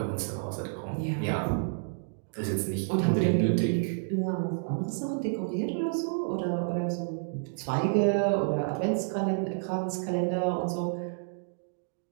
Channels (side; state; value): left; silent; digital silence